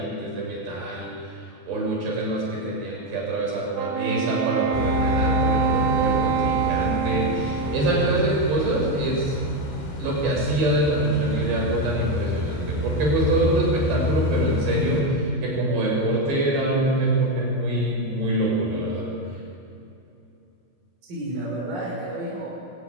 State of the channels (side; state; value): both; normal; correlation 0.08